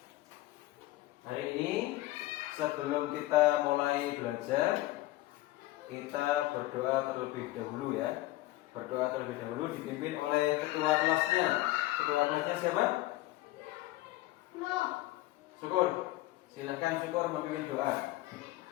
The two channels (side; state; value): right; quieter; 17.4 dB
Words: Hari ini sebelum kita mulai belajar, kita berdoa terlebih dahulu ya. Berdoa terlebih dahulu dipimpin oleh ketua kelasnya. Ketua kelasnya siapa? Syukur. Silakan Syukur memimpin doa.